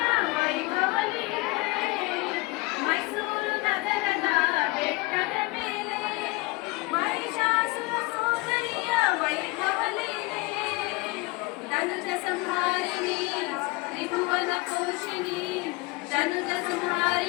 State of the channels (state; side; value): quieter; right; 23.6 dB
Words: ವೈಭವಲಿಗೆ, ಮೈಸೂರು ನಗರದ ಬೆಟ್ಟದ ಮೇಲೆ ಮಹಿಷಾಸುರ ಸೋದರಿಯ ವೈಭವಲಿಗೆ, ಧನುಜ ಸಂಹಾರಿಣಿ ತ್ರಿಭುವನ ಪೋಷಿಣಿ, ಧನುಜ